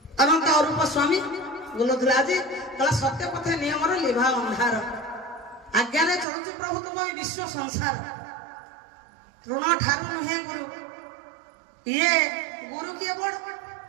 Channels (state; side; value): drops out; left; at 6.2 s